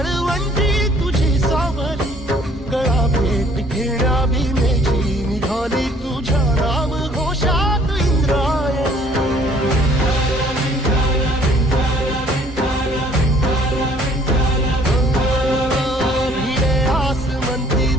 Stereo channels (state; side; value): normal; both; correlation 0.58